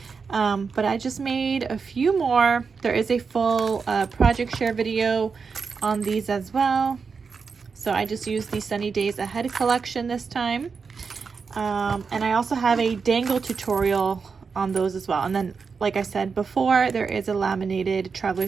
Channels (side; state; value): left; quieter; 5.3 dB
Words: But I just made a few more. There is a full project share video on these as well. So I just used the Sunny Days Ahead collection this time. And I also have a dangle tutorial on those as well. And then, like I said before, there is a laminated